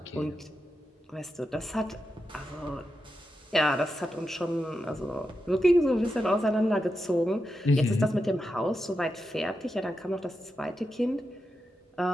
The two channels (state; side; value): normal; both; correlation 0.88